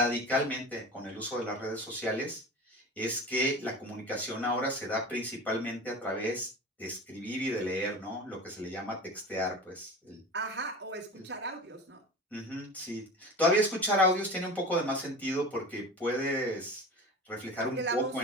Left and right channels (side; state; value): both; normal; correlation 0.33